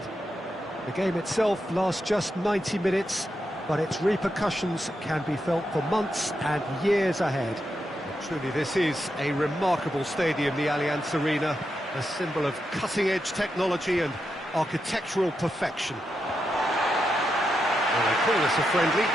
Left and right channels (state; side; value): normal; both; correlation 0.85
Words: The game itself lasts just 90 minutes, but its repercussions can be felt for months and years ahead. Truly, this is a remarkable stadium, the Allianz Arena, a symbol of cutting-edge technology and architectural perfection. Well, they call this a friendly,